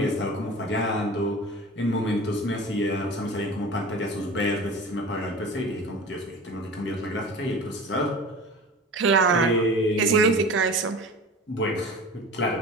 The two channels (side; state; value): both; normal; correlation 0.36